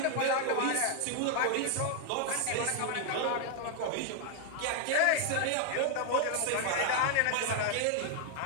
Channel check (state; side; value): different; both; correlation 0.00